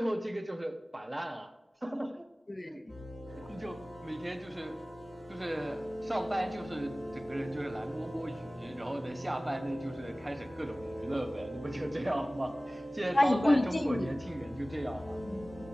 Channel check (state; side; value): normal; both; correlation 0.98